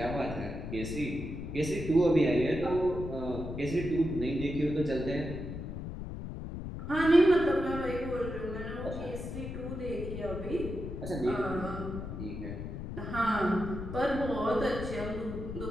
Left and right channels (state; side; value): noise; left; rumble, 7 dB below the sound